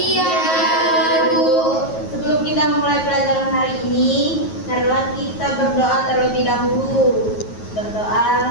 Bu. Sebelum kita memulai pelajaran hari ini, marilah kita berdoa terlebih dahulu.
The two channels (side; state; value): right; late; 9.3 ms